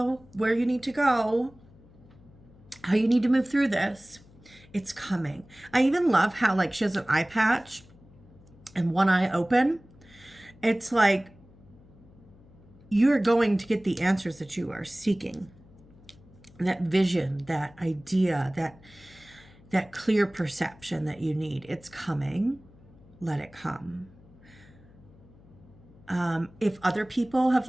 where you need to go, how you need to move through this. It's coming. I even love how like she has an eye patch and one eye open. It's like you're going to get the answers that you are seeking. That vision, that idea, that clear perception that you need. It's coming. Let it come. If other people have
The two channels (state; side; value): noise; left; hum, 25 dB below the sound